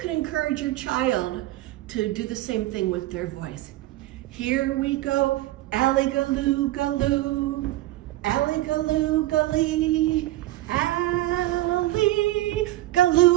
can encourage your child to do the same thing with their voice. Here we go, alley-galoo, galoo, alley-galoo, gully, alley,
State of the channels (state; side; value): quieter; left; 16.3 dB